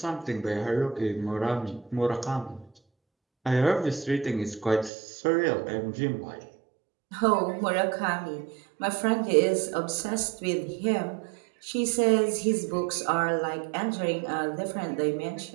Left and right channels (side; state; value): left; drops out; at 4.9 s